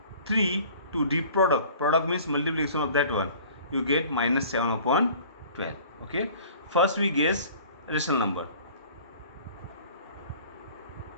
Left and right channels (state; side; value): inverted; both; correlation -0.48